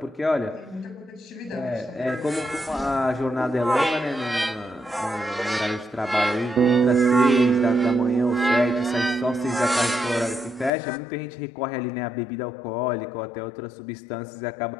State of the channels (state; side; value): drops out; right; at 10.7 s